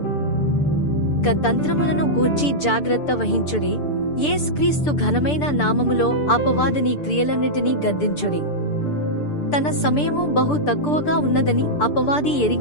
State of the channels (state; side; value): late; right; 6.8 ms